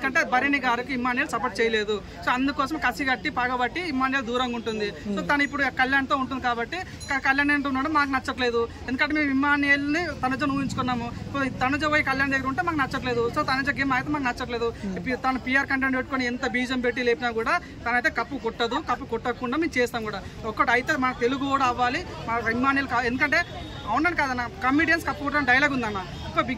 భరణి గారికి ఇమ్మానియల్ సపోర్ట్ చేయలేదు. సో అందుకోసం కసి కట్టి పగబట్టి ఇమ్మానియల్ దూరంగా ఉంటుంది. సో తను ఇప్పుడు కళ్యాణ్తో ఉంటుంది కాబట్టి కళ్యాణ్ అంటున్నాడు మాకు నచ్చట్లేదు. ఎందుకంటే మేము ఇమ్మానియల్ని తనుజను ఊహించుకున్నాము. తనుజ పోయి కళ్యాణ్ దగ్గర ఉంటే మాకు నచ్చట్లేదు. సో తనుజ గేమ్ అయితే మాకు నచ్చట్లేదు. తను పిఆర్ కంటెంట్ పెట్టుకొని ఎంత బీజం పెట్టి లేపినా కూడా తనైతే కప్పు కొట్టదు. కప్పు కొట్టకుండా మేము చేస్తాం కూడా. ఒక్కటి అయితే మన తెలుగు కూడా అవ్వాలి, మన ఇమ్మానియల్. ఎందుకంటే అవునని కాదన్న, కమెడియన్స్ కప్పు కొట్టడం డైలాగ్ ఉందన్న. ఇప్పుడు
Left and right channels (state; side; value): identical; both; correlation 1.00